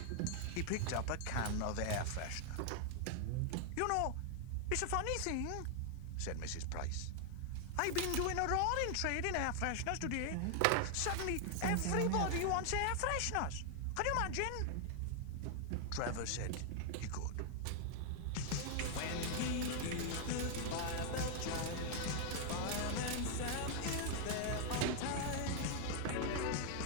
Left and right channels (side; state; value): both; different; correlation 0.00